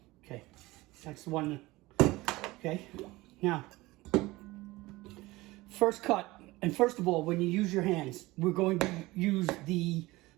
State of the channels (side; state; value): left; quieter; 20.2 dB